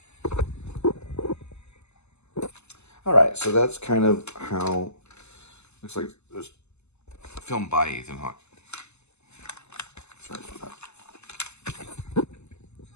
All right, so that's kind of how looks like it was filmed by Ethan Hawke. Sorry about that.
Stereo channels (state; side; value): late; right; 0.81 ms